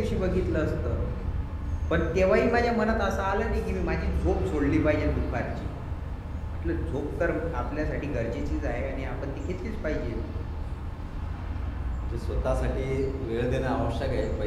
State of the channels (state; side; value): identical; both; correlation 1.00